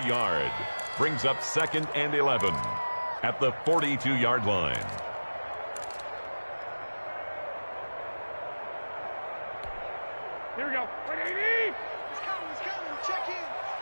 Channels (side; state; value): both; inverted; correlation -1.00